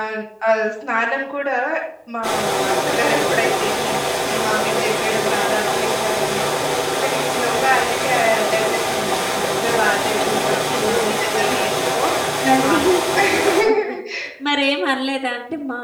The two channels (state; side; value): identical; both; correlation 1.00